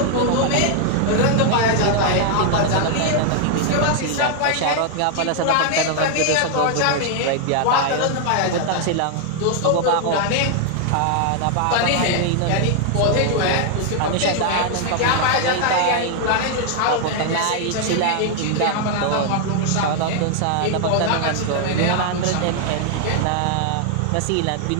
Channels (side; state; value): both; different; correlation 0.00